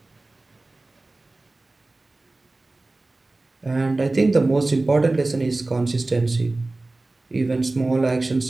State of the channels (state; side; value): quieter; left; 3.1 dB